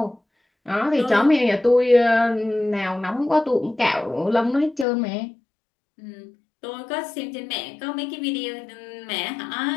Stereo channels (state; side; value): drops out; right; at 4.9 s